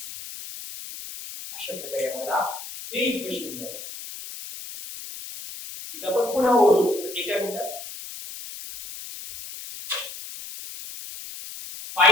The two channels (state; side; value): noise; left; hiss, 11 dB below the sound